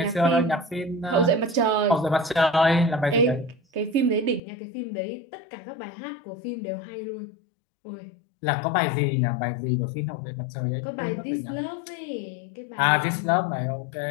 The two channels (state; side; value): drops out; right; at 4.4 s